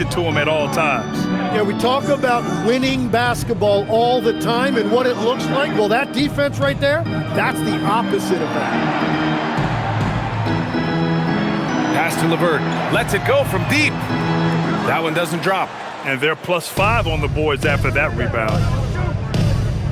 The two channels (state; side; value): identical; both; correlation 1.00